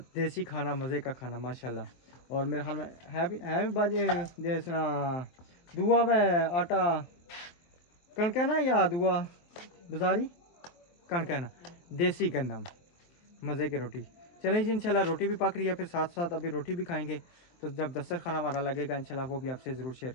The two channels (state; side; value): late; right; 24 ms